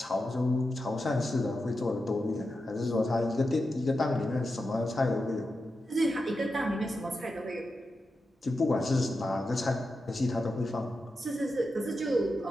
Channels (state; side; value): normal; both; correlation 0.89